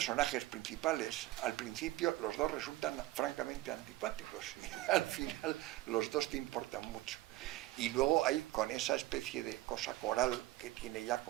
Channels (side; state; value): left; quieter; 17.2 dB